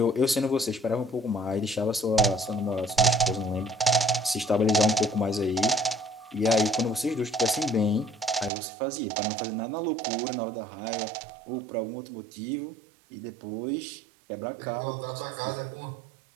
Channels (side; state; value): left; drops out; at 8.5 s